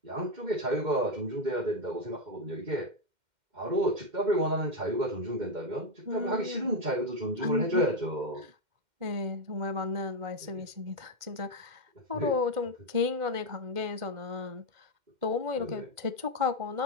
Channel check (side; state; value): left; late; 2.1 ms